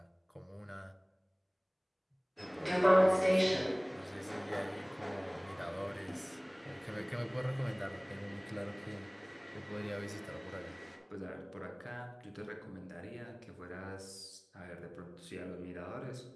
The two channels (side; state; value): both; identical; correlation 1.00